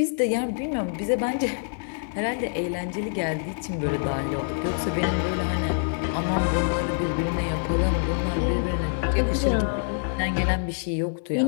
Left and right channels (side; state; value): right; silent; 61 dB below the other